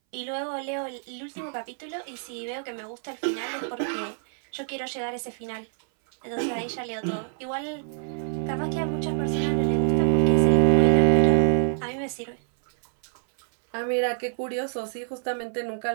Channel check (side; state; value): left; silent; 61 dB below the other